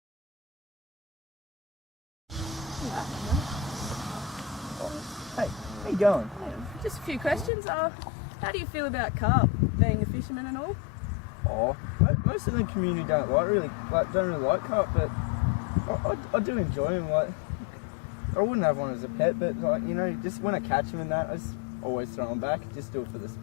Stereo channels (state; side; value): drops out; right; at 7.5 s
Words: Hey, how you going? Just a few questions. How do you feel about carp, being a fisherman and all? Oh, most of the community don't really like carp, but I do enjoy them. Like, I wouldn't have one as a pet, but like just when I catch them and that, I just always throw them back. Just do it for the